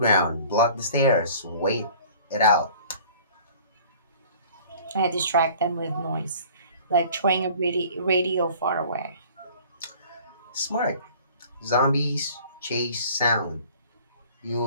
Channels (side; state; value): both; inverted; correlation -0.49